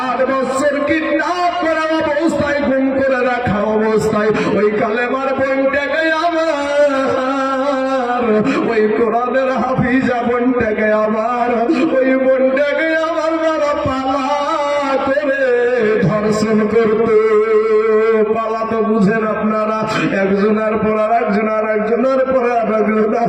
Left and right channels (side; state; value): right; noise; hum, 28 dB below the sound